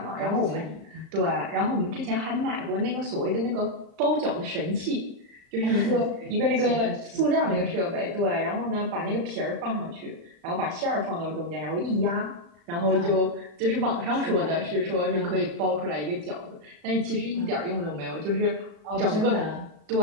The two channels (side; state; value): left; late; 35 ms